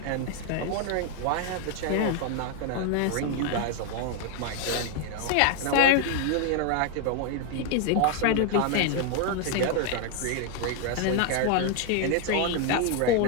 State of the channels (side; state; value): both; different; correlation 0.00